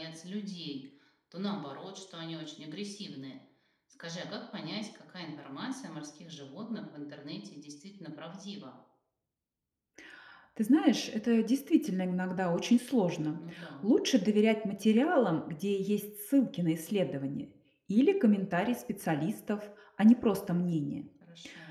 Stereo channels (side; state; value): both; identical; correlation 1.00